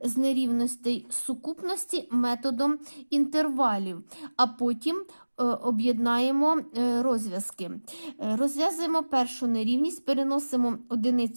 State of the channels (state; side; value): inverted; both; correlation -1.00